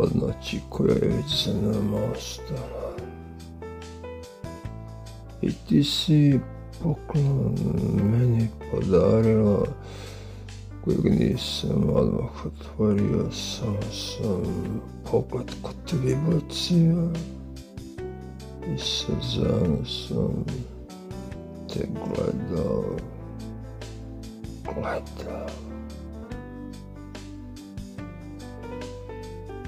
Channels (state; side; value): identical; both; correlation 1.00